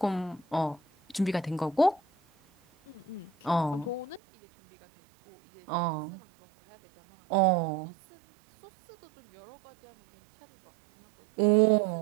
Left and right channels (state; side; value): drops out; left; at 4.2 s